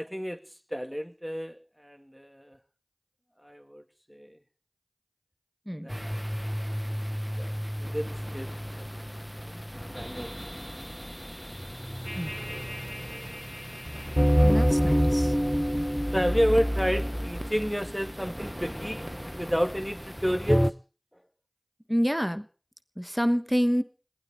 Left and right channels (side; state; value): both; identical; correlation 1.00